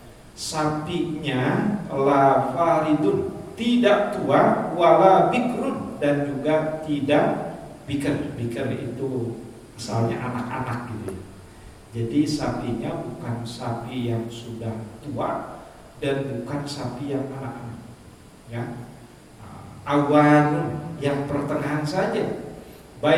Sapinya la faridun, tidak tua, wala bikrun, dan juga tidak bikar. Bikar itu asalnya anak-anak gitu ya. Jadi sapinya bukan sapi yang sudah tua dan bukan sapi yang anak-anak, ya. Awan yang pertengahan saja,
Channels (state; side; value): identical; both; correlation 1.00